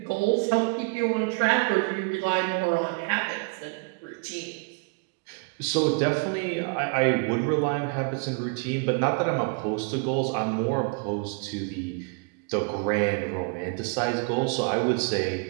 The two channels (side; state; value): left; quieter; 32.2 dB